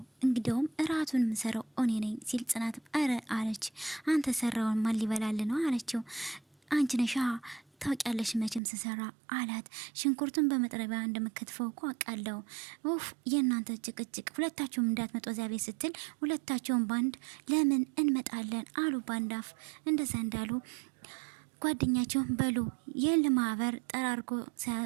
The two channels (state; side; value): drops out; left; at 8.6 s